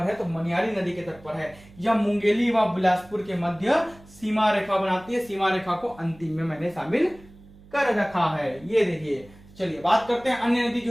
है, तो मनियारी नदी के तट पर है। यह मुंगेली व बिलासपुर के मध्य सीमा रेखा बनाती है। सीमा रेखा को अंतिम में मैंने शामिल कर रखा है, ये देखिए। चलिए बात करते हैं अन्य नदी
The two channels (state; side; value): noise; right; hum, 23 dB below the sound